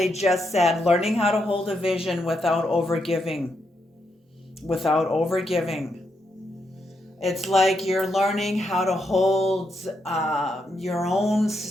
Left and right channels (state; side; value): normal; both; correlation 0.81